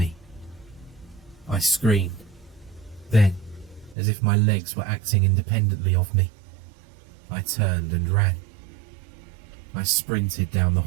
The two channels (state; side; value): drops out; left; at 4.0 s